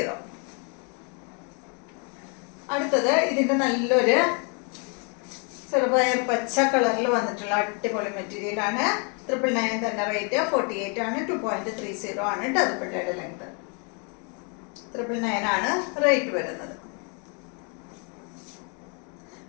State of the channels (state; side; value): quieter; right; 37.1 dB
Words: അടുത്തത് ഇതിന്റെ നല്ലൊരു ചെറുപയർ പച്ച കളറിൽ വന്നിട്ടുള്ള അടിപൊളി മെറ്റീരിയൽ ആണ്. 999 തന്നെ റേറ്റ്. 48 ആണ്. 2.30 ആണ് കേട്ടോ ദുപ്പട്ടയുടെ ലെങ്ത്. 999 ആണ് റേറ്റ് വരുന്നത്.